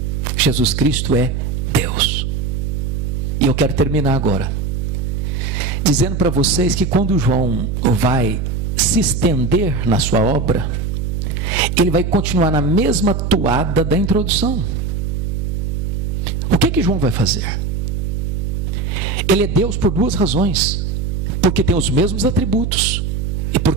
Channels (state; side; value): noise; right; hum, 2 dB below the sound